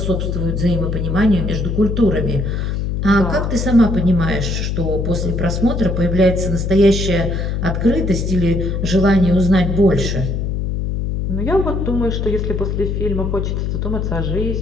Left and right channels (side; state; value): left; noise; hum, 1 dB below the sound